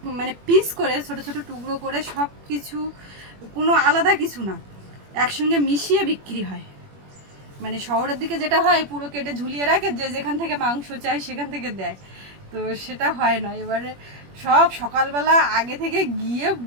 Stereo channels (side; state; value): left; late; 21 ms